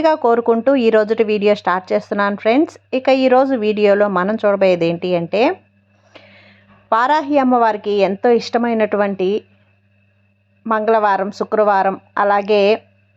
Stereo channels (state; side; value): identical; both; correlation 1.00